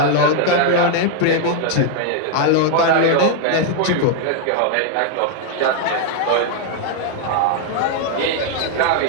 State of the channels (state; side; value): different; both; correlation 0.00